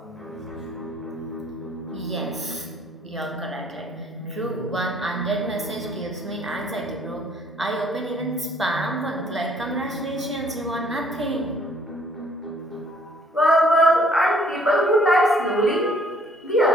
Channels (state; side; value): normal; both; correlation 0.61